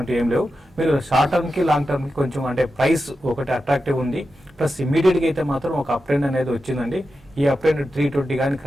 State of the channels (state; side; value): normal; both; correlation 0.90